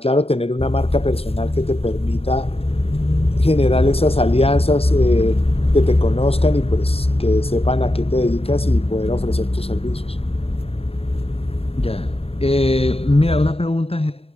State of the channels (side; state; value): right; late; 0.28 ms